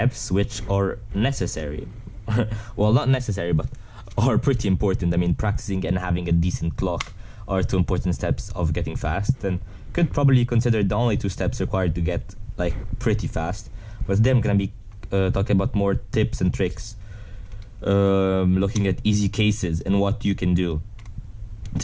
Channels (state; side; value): identical; both; correlation 1.00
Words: which are necessary. Well, not necessary, but are pretty important. I mean, practicing and having a decent clock are two important steps of getting fast, and could probably consider the only two steps required to get like pretty fast. But today I'm gonna be talking about more tips and tricks, looking at easy cases and what you can do